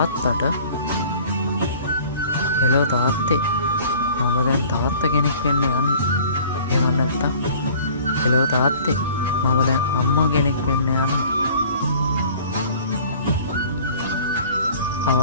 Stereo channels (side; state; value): both; inverted; correlation -0.49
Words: හෙලෝ තාත්තේ මම දැන් තාත්තා කෙනෙක් වෙන්න යන්නේ. එහෙම නැත්තම් හෙලෝ තාත්තේ මම දැන් අම්මා කෙනෙක් වෙන්න යන්නේ.